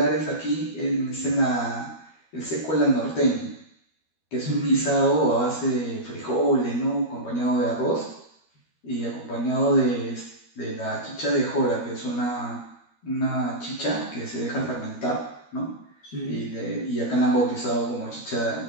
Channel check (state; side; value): late; right; 13 ms